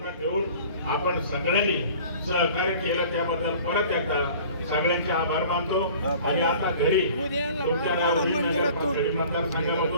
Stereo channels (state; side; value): inverted; both; correlation -0.47